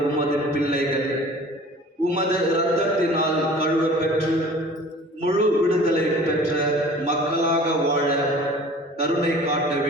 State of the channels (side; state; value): both; normal; correlation 0.45